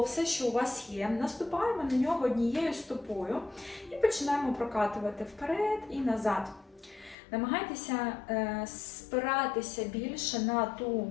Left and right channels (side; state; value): right; drops out; at 7.2 s